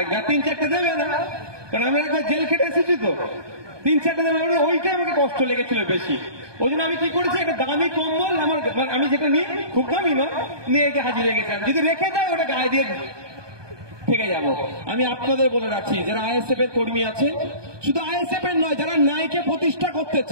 আর 3-4টে দেবে না, কারণ আমি একবার জেল খেটে এসেছি তো। 3-4টে দেবে, ওইটাই আমাকে কষ্ট লেগেছিল বেশি। ওই জন্য আমি কি করেছি, একটা দামি কম্বল আমার, আমি যেটা নিই খুব দামি নয়, নিয়ে গিয়ে হাজির হয়ে গেছিলাম। যদি রেখে দেয় ওটা গায়ে দিয়ে থেকে যাব। আমি আপনাদের বলে রাখছি, যারা আইএসএফ এর কর্মী আছে, শুধু আইএসএফ এর নয়, যারা ন্যায়কে প্রতিষ্ঠা করতে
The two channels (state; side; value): late; left; 1.2 ms